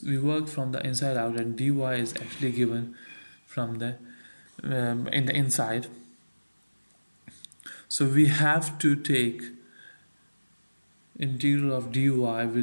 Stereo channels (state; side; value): inverted; both; correlation -1.00